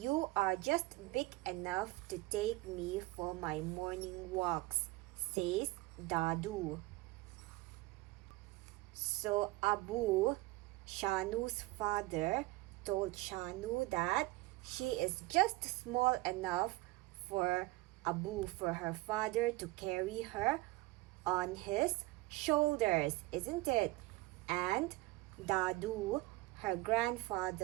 are just big enough to take me for my morning walks, says Dadu. So Abu, Shanu's father, told Shanu that she is just small enough for Abu, for her father, to carry her on his shoulders, isn't it? And Dadu, her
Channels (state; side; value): quieter; left; 20.0 dB